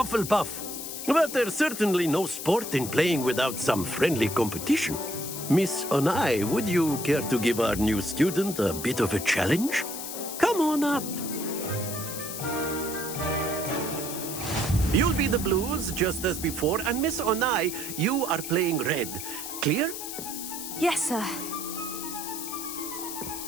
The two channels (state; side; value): noise; left; hiss, 7 dB below the sound